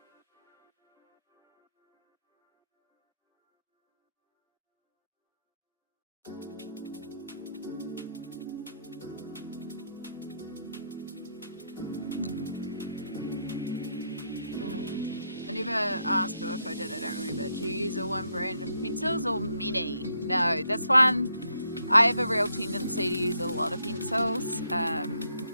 I never asked her if I did, I don't remember. Do you use a one brand of pencils or many? No, this one, I have a real tendency to use a lot of pencils.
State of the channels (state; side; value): inverted; both; correlation -0.77